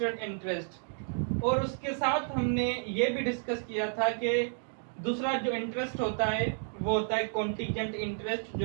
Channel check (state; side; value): silent; left; 56 dB below the other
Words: इंटरेस्ट और उसके साथ हमने ये भी डिस्कस किया था कि दूसरा जो इंटरेस्ट होता है वो होता है कॉन्टीजेंट इंटरेस्ट,